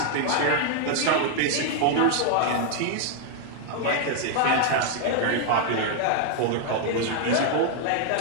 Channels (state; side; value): different; both; correlation 0.00